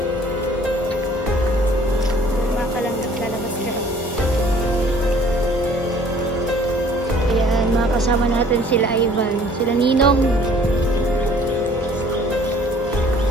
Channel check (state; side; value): normal; both; correlation 0.54